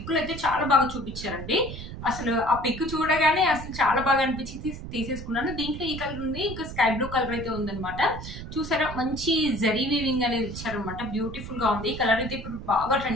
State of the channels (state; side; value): noise; right; rumble, 10 dB below the sound